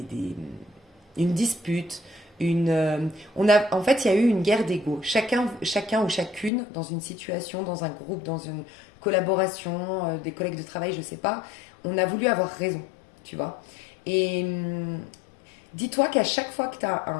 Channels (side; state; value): right; drops out; at 6.5 s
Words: dispute, en fait, il y a eu une guerre d'ego. Chacun ou chacune, dans une situation, dans un groupe, dans une collaboration, des collègues de travail, je sais pas, on a voulu avoir raison, tu vois. Et dis-toi qu'à chaque fois que tu as